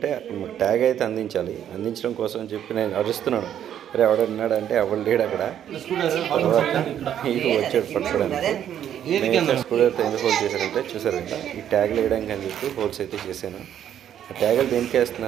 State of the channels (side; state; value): left; quieter; 10.1 dB